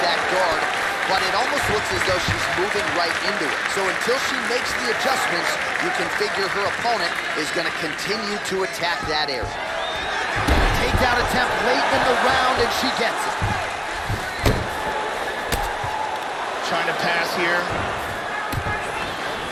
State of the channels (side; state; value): both; identical; correlation 1.00